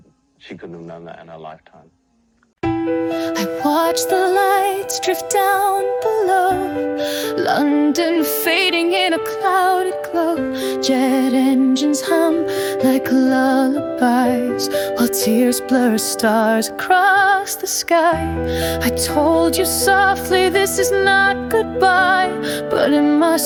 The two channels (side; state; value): both; identical; correlation 1.00